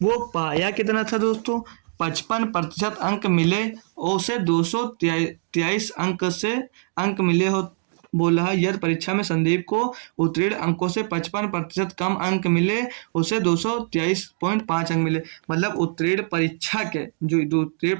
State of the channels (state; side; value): silent; left; 56 dB below the other